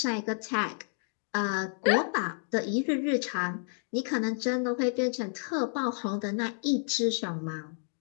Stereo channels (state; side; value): silent; right; 58 dB below the other